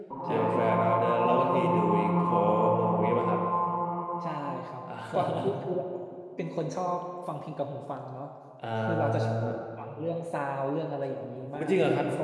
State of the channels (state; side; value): identical; both; correlation 1.00